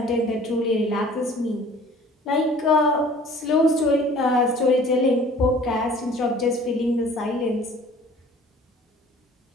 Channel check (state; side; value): normal; both; correlation 0.49